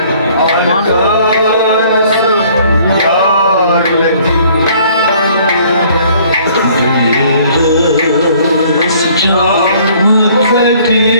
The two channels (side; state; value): both; inverted; correlation -0.58